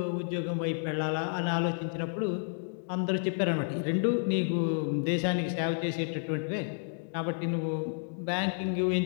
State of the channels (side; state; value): right; silent; digital silence